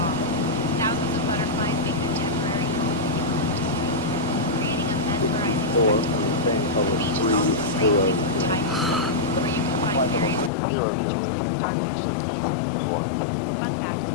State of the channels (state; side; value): drops out; right; at 10.5 s